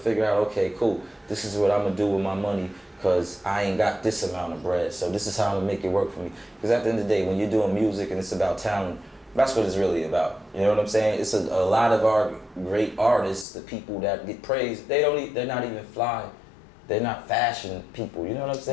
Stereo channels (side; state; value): right; drops out; at 13.5 s